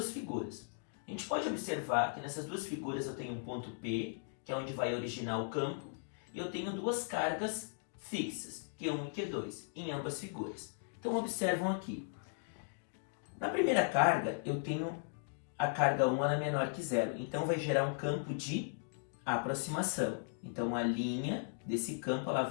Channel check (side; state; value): right; silent; digital silence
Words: figuras. A gente pode observar que nessas duas figuras eu tenho um ponto P, que é onde vai originar o campo, e eu tenho duas cargas fixas, Q1 e Q2, em ambas figuras. Então observam aqui. Na primeira carga, eu tenho a carga 1, ela é menor que zero, então vai gerar um campo de aproximação. Então a linha desse campo ela